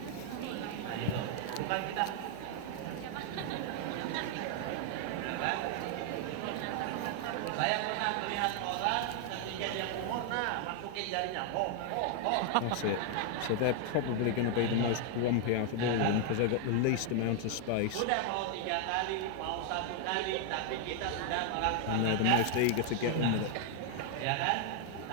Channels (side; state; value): both; different; correlation 0.00